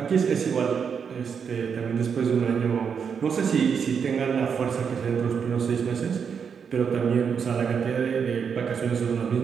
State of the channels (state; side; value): quieter; left; 6.7 dB